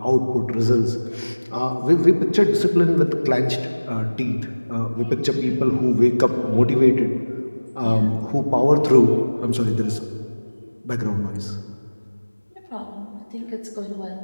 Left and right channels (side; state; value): both; inverted; correlation -1.00